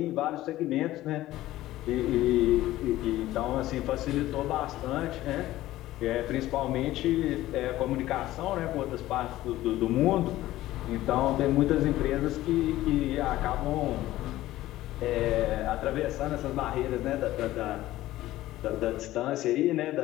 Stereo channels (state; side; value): quieter; right; 15.6 dB